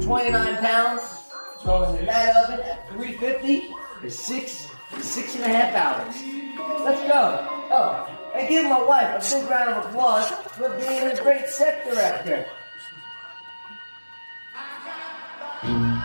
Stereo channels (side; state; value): both; inverted; correlation -1.00